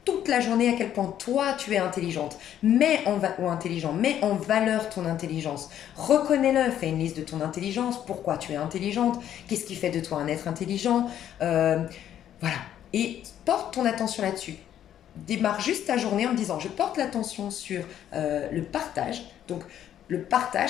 toute la journée à quel point toi tu es intelligente, ou intelligent, mets en valeur ton intelligence. Reconnais-le, fais une liste de ton intelligence, pourquoi tu es intelligente, qu'est-ce qui fait de toi un être intelligent, euh, voilà. Et porte ton attention là-dessus. Démarre juste ta journée en me disant je porte l'attention sur le partage. Donc le partage,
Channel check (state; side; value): quieter; right; 10.7 dB